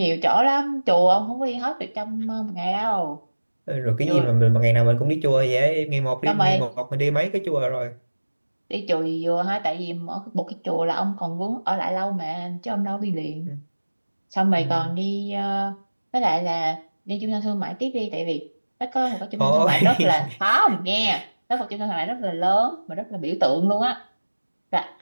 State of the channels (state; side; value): inverted; both; correlation -1.00